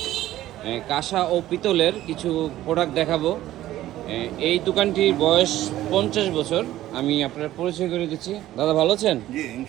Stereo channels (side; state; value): left; quieter; 14.3 dB